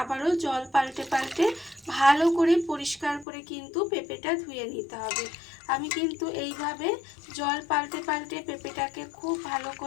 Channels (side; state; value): right; drops out; at 3.2 s